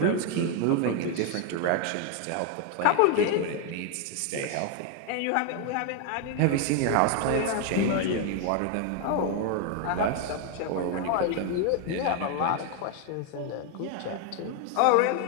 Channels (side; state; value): both; different; correlation 0.01